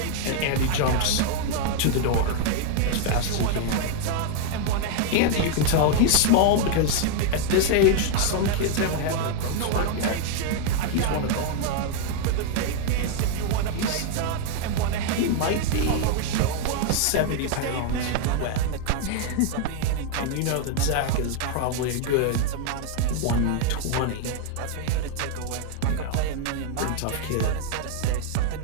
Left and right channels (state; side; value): different; both; correlation 0.00